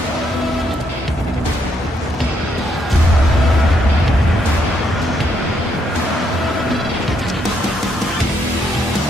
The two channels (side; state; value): both; normal; correlation 0.74